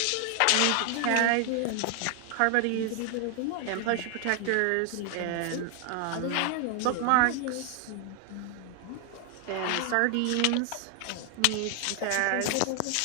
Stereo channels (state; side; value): different; both; correlation 0.00